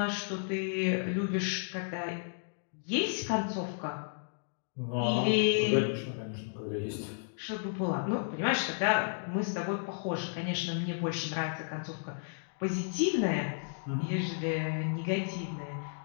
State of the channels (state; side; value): silent; right; digital silence